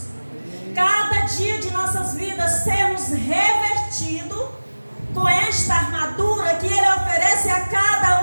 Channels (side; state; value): both; inverted; correlation -1.00